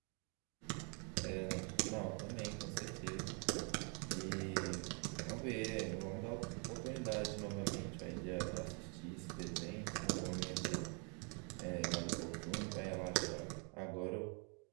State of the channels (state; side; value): quieter; left; 37.0 dB